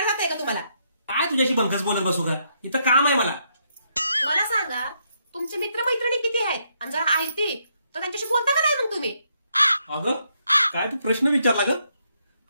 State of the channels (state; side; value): inverted; both; correlation -0.76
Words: जातंय का तुम्हाला? काय तुझ्याशी बंकस बोलत बसू का? इथं काम आहे मला. मला सांगा, तुमचे मित्रमैत्रिणी किती आहेत? आणि जर आहेत तर त्यांच्याशी बोलता का नाही मग तुम्ही? अगं काय तू प्रश्न विचारला ग?